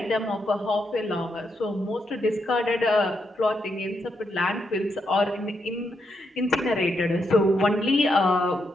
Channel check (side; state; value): both; normal; correlation 0.81